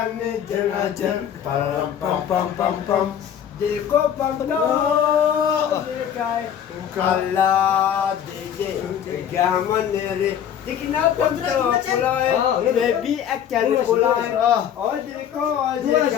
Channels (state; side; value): quieter; right; 9.3 dB